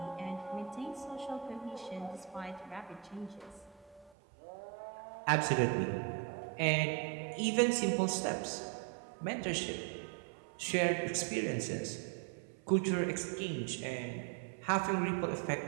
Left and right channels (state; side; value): drops out; left; at 4.1 s